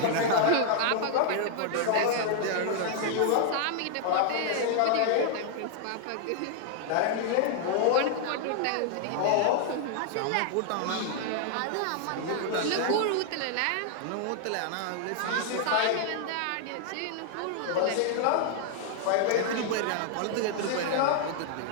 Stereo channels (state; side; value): different; both; correlation -0.01